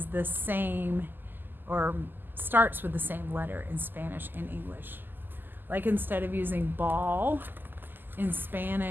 the same or starts with the same letter in Spanish and English. Like instead of using ball in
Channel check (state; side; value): late; left; 0.091 ms